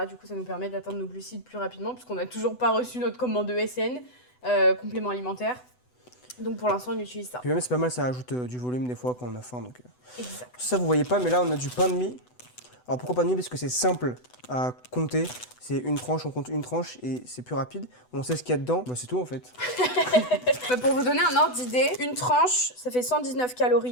Du coup, ça nous permet d'atteindre nos glucides plus rapidement, puisqu'on n'a toujours pas reçu notre commande de SN, complément alimentaire. Donc pour l'instant, on utilise ça. Puis même, c'est pas mal, ça ajoute du volume des fois quand on a faim. Donc, Exact. ça, vous voyez pas, mais là, on a du pain de mie. Alors pourquoi pain de mie? Parce que c'est simple à compter. C'est une tranche, on compte une tranche et c'est plus rapide. On sait ce qu'il y a dedans. Bah, c'est tout en fait. Pour vous donner un ordre d'idée, une tranche, ça fait 119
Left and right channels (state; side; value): late; right; 8.0 ms